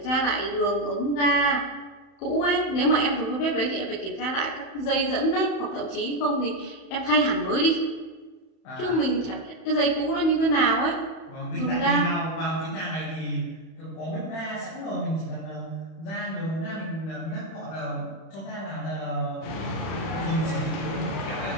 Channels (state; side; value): late; right; 31 ms